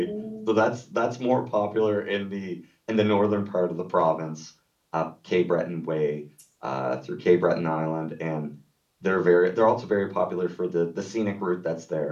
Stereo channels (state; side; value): identical; both; correlation 1.00